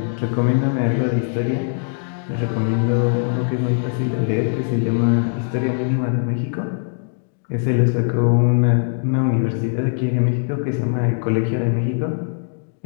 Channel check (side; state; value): right; silent; digital silence